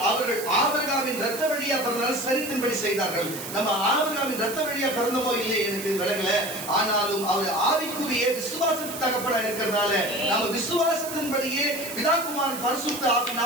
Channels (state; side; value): noise; right; hiss, 9 dB below the sound